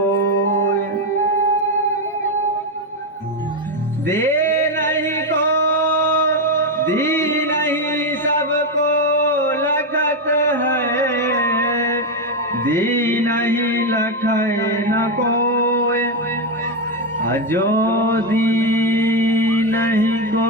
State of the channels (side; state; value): both; normal; correlation 0.07